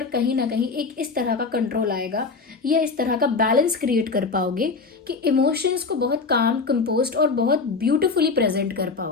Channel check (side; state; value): right; quieter; 4.4 dB